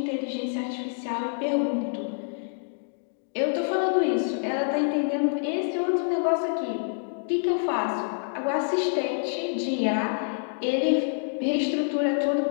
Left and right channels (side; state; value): right; silent; digital silence